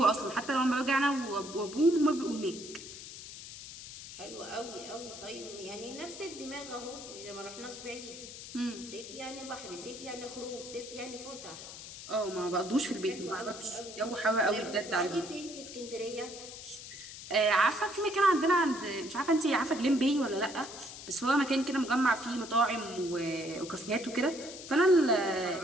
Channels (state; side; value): noise; left; hiss, 12 dB below the sound